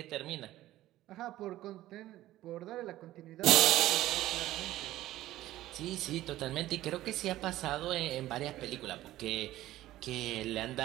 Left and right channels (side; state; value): left; quieter; 15.1 dB